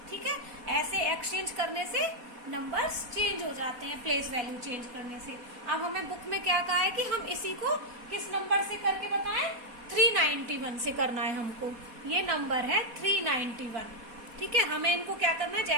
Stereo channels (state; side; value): late; left; 4.2 ms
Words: ठीक है, ऐसे एक्सचेंज करने से नंबर्स चेंज हो जाते हैं, प्लेस वैल्यू चेंज करने से। अब हमें बुक में क्या कहा है कि हम इसी को किस नंबर से करके बताएं? 391 से करना है हमको। ये नंबर है 391। ठीक है, हमें इनको क्या करना है?